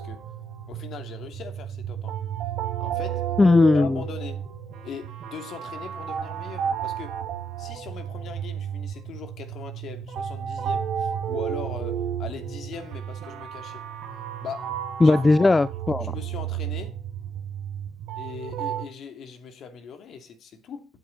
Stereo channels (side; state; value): both; normal; correlation 0.80